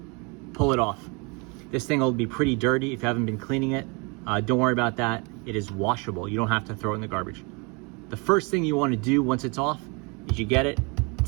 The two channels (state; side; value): quieter; left; 30.7 dB